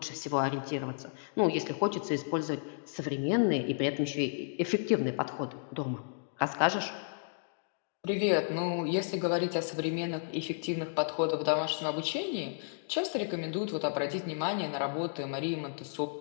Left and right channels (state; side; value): silent; right; digital silence